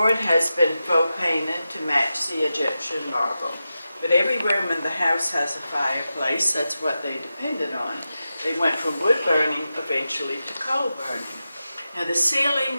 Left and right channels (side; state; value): both; inverted; correlation -0.91